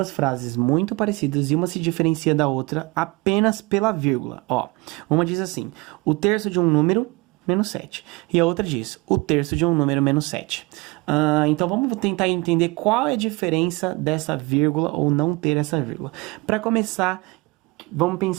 frases muito parecidas e uma se diferencia da outra apenas pela vírgula. Ó, uma diz assim: o terço de um número menos 7. E a outra diz, o terço de um número menos 7. Então vamos tentar entender qual é a diferença dessa vírgula ou não ter essa vírgula. Para começar, vamos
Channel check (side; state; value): left; quieter; 24.9 dB